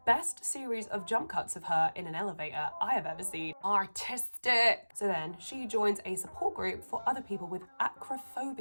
best series of jump cuts of her in an elevator I have ever seen. Artistic! So then she joins a support group for other people with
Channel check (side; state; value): both; inverted; correlation -1.00